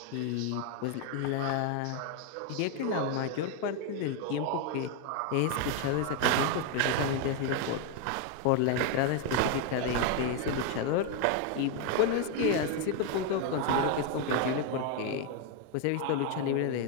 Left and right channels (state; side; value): different; both; correlation 0.01